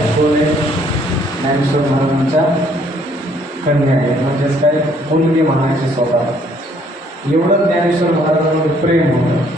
कोण आहे? ज्ञानेश्वर महाराजांच्या कन्या आहेत. म्हणजेच काय, मुलगी म्हणायची स्वतः. एवढं ज्ञानेश्वर महाराजांवर प्रेम होतं.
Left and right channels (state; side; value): normal; both; correlation 0.64